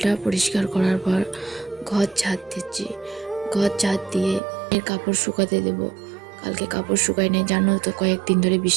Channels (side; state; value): left; drops out; at 4.4 s